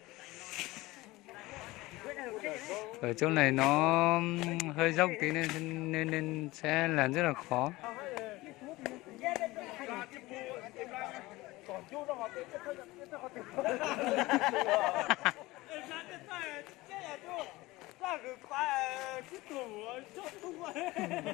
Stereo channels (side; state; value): right; quieter; 20.0 dB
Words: Ở chỗ này nó hơi dốc tí nên sẽ làm rất là khó.